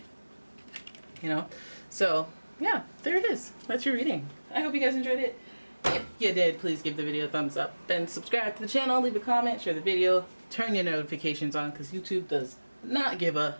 You know? So, yeah, there it is. That's your reading. I hope you guys enjoyed it. If you did, please give the video a thumbs up and subscribe to the channel, leave a comment, share the video, turn your notifications on, because YouTube does not give a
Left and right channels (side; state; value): both; inverted; correlation -1.00